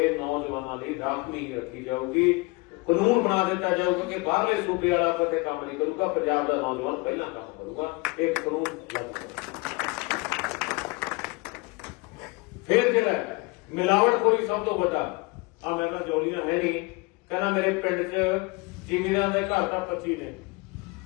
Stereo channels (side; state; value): right; quieter; 26.4 dB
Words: ਨੌਜਵਾਨਾਂ ਲਈ ਰਾਖਵੀਂ ਰੱਖੀ ਜਾਊਗੀ। ਕਾਨੂੰਨ ਬਣਾ ਦਿੱਤਾ ਜਾਊਗਾ ਕਿ ਬਾਹਰਲੇ ਸੂਬੇ ਵਾਲਾ ਕਿਤੇ ਕੰਮ ਨਹੀਂ ਕਰੂਗਾ, ਪੰਜਾਬ ਦਾ ਨੌਜਵਾਨ ਪਹਿਲਾਂ ਕੰਮ ਕਰੂਗਾ। ਇਹ ਕਾਨੂੰਨ ਫਿਰ ਜਿਹੜਾ ਮਿਲਾਵਟਖੋਰੀ ਸਭ ਤੋਂ ਵੱਡਾ ਆ, ਮੈਂ ਕਿਹਾ ਜੋਲੀਆਂ ਹੈ ਨਹੀਂ, ਕਹਿੰਦਾ ਮੇਰੇ ਪਿੰਡ 'ਚ ਜ਼ਿਮੀਂਦਾਰਾਂ ਦੇ ਘਰ ਤਾਂ 25 ਨੇ,